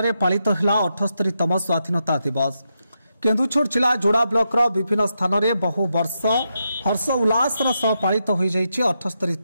पालित है 78तम स्वाधीनता दिवस। केन्दुछर जिला जोड़ा ब्लॉक विभिन्न स्थान में बहु वर्ष हर्ष उल्लास सह पालित हो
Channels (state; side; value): inverted; both; correlation -0.84